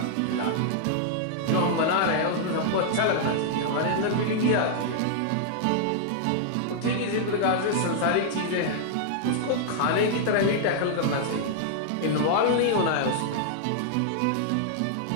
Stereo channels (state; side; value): different; both; correlation -0.01